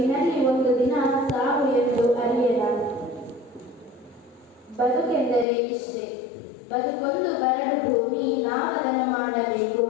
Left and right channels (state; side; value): drops out; right; at 5.5 s